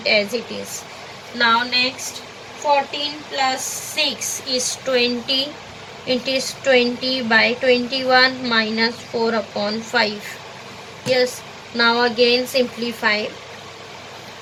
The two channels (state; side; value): identical; both; correlation 1.00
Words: as it is. Now next 14 plus 6 is 20. It is 20 by 21 minus 4 upon 5. Yes. Now again simplify.